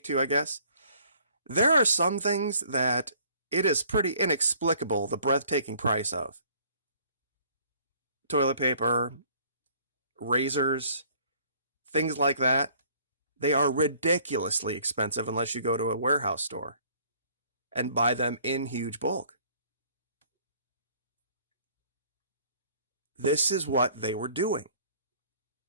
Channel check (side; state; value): both; inverted; correlation -0.58